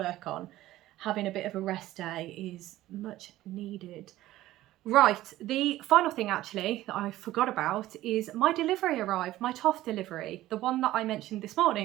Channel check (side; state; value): left; quieter; 15.4 dB